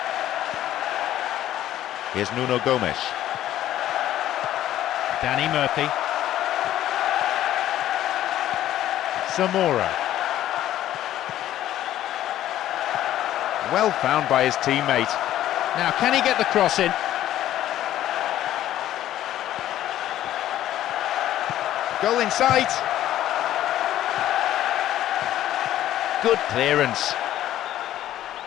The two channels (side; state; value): right; quieter; 12.8 dB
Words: Here's Nuno Gomes. Danny Murphy. Zamora. Well found by his teammate. Now, can he get the cross in? Goal in sight. Good clearance.